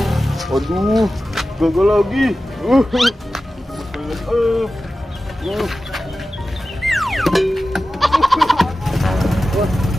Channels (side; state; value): both; normal; correlation 0.95